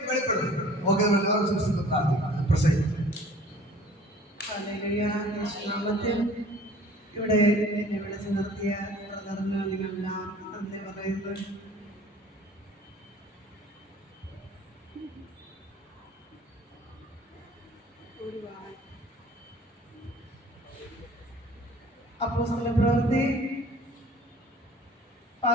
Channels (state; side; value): normal; both; correlation 0.50